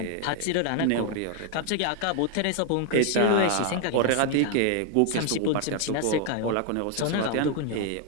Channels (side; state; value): both; different; correlation 0.00